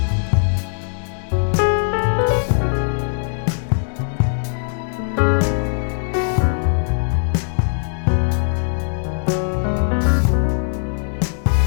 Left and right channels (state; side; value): silent; right; 66 dB below the other